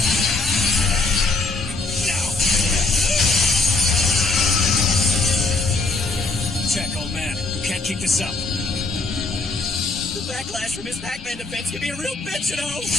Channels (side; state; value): right; quieter; 3.5 dB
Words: Now! Check, old man. You can't keep this up. The backlash from his Pac-Man defense can be a real bitch, you know!